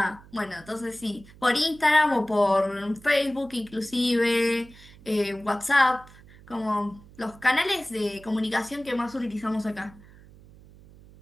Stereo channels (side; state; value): right; noise; hum, 22 dB below the sound